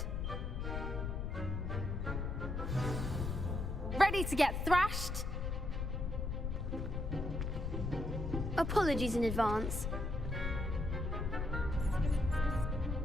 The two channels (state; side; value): noise; left; rumble, 2 dB below the sound